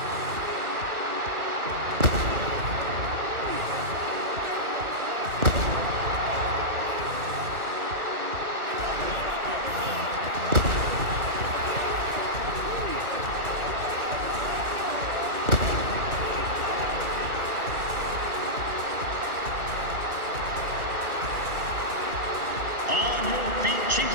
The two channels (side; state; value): left; late; 1.3 ms